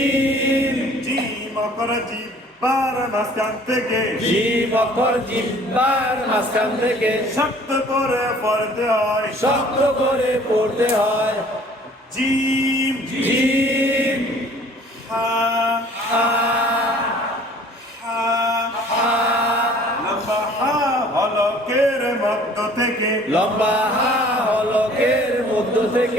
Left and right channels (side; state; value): both; normal; correlation 0.52